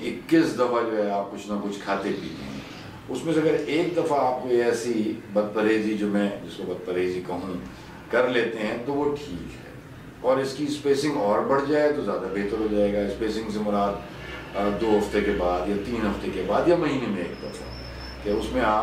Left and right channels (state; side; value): identical; both; correlation 1.00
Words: 21 دفعہ جو ہے آپ کچھ نہ کچھ کھاتے پیتے ہیں. اس میں سے اگر ایک دفعہ آپ کو ایسی بد پرہیزی, جو میں جس کو بد پرہیزی کہوں, کر لیتے ہیں تو وہ ٹھیک ہے. اور اس کی اسپیسنگ اور بڑھ جائے تو زیادہ بہتر ہو جائے گا. اسپیسنگ سے مراد 2 ہفتے کے بعد یا 3 ہفتے کے بعد یا مہینے میں ایک دفعہ, کہ اس میں